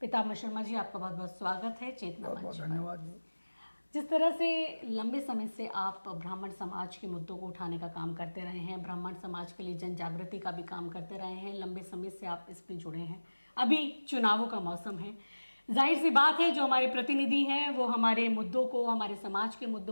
शर्मा जी, आपका बहुत बहुत स्वागत है चेतना मंच पर। धन्यवाद। जिस तरह से लंबे समय से आप ब्राह्मण समाज के मुद्दों को उठाने का काम करते रहे हैं, ब्राह्मण समाज के लिए जन जागृति का भी काम करते रहे हैं, लंबे समय से आप इसमें जुड़े हैं। अभी चुनावों का मौसम है, जाहिर सी बात है जो हमारे प्रतिनिधि हैं वो हमारे मुद्दों को, हमारे समाज के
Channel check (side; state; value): both; inverted; correlation -1.00